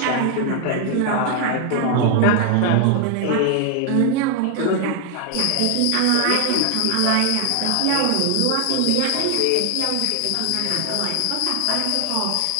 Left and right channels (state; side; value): different; both; correlation 0.00